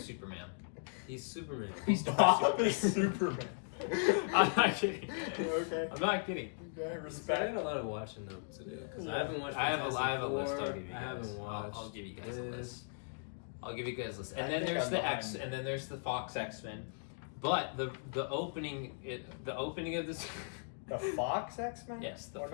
Superman. He's Superman. Bob is Superman. I'm not kidding. Okay. I'm not kidding. Okay, I respect. got a lot of watching them to do because Yeah. I haven't watched. I have a list. I'll Fantastic give you Four. guys. I haven't watched. I'll give you guys a this. list. I'll give you guys a list. I And then think there's I'm the behind. X, and then there's the Fox X-Men. But the opening of this. The Fox X-Men? Yes, the What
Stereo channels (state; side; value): silent; right; digital silence